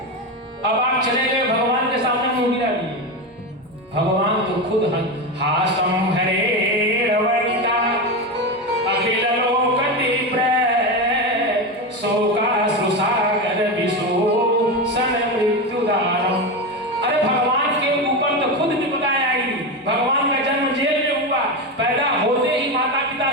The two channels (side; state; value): both; normal; correlation 0.17